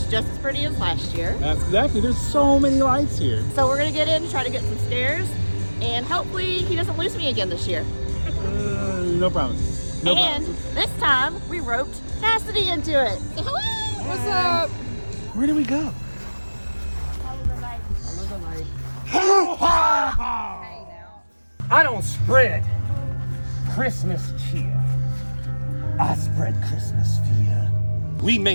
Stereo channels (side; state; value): both; inverted; correlation -1.00